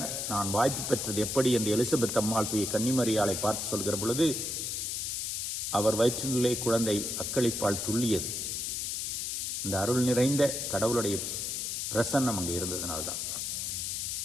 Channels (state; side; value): noise; left; hiss, 2 dB below the sound